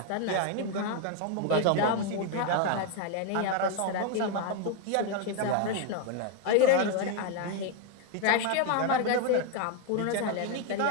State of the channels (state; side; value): different; both; correlation 0.01